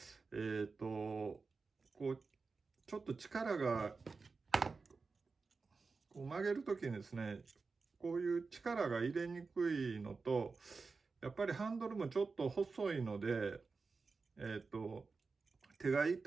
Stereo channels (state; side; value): quieter; left; 4.4 dB